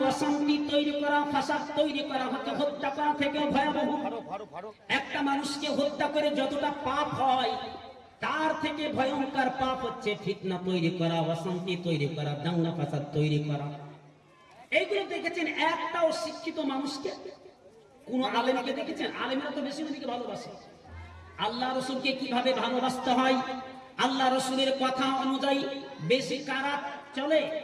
অশান্তি তৈরি করা, ফাসাদ তৈরি করা হচ্ছে হত্যা করা থেকে ভয়াবহ। একটা মানুষকে হত্যা করে যতটা পাপ হয়, তার থেকে ভয়ঙ্কর পাপ হচ্ছে ফিতনা তৈরি করা, অশান্তি তৈরি করা, দাঙ্গা ফাসাদ তৈরি করা। এইগুলো দেখেছেন একটাও শিক্ষিত মানুষকে, কোন আলেমকে দেখেছেন? আলেমরা তো বেশি নবীকে ভালোবাসে। আল্লাহ রাসূলকে কিভাবে ভালোবাসতে হয়, আল্লাহ রাসূলের কথা অনুযায়ী বেশি কারা চলে?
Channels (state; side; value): identical; both; correlation 1.00